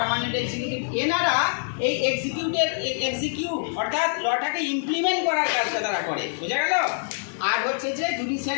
এক্সিকিউটিভ। এনারা এই এক্সিকিউট অর্থাৎ লটাকে ইমপ্লিমেন্ট করার কাজটা তারা করে। বোঝা গেল? আর হচ্ছে যে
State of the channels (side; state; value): right; silent; digital silence